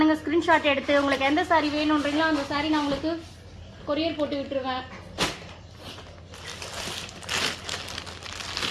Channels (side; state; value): both; identical; correlation 1.00